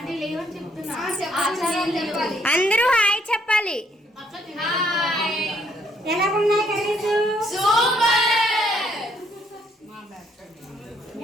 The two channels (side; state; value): both; normal; correlation 0.69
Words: అందరూ హాయ్ చెప్పాలి. ఎలా ఉన్నాయి కర్రీస్?